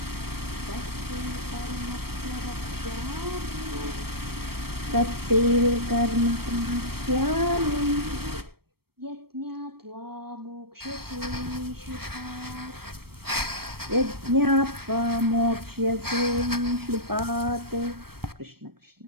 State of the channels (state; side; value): late; left; 0.95 ms